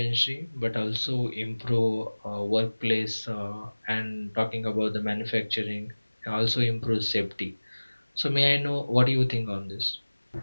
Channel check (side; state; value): both; inverted; correlation -1.00